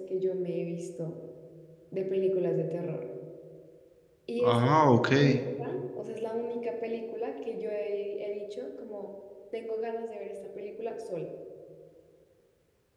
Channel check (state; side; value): identical; both; correlation 1.00